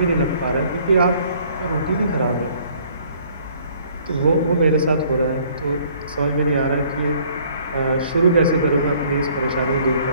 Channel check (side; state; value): both; inverted; correlation -0.58